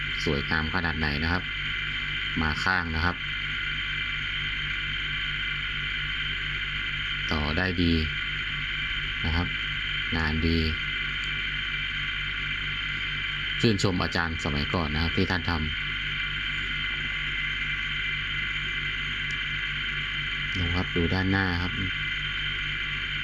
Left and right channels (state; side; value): identical; both; correlation 1.00